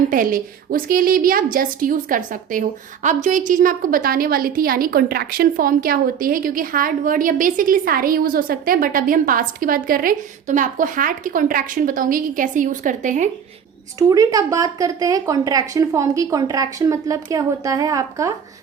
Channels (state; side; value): quieter; left; 7.8 dB